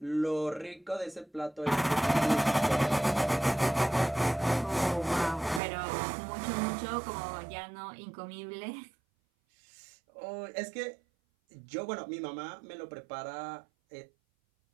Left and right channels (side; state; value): left; drops out; at 5.6 s